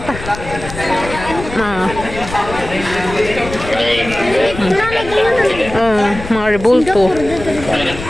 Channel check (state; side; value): noise; left; rumble, 11 dB below the sound